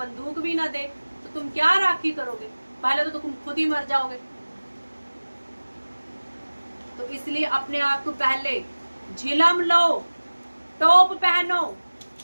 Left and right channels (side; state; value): both; inverted; correlation -1.00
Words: भी ना दे तो तुम क्या राखी करोगे? पहले तो तुम खुद ही मर जाओगे। तो इसलिए अपने आप को पहले झिलम लो, टोप पहनो,